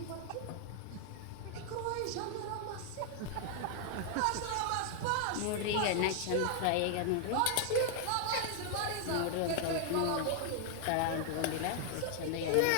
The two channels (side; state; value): both; different; correlation 0.00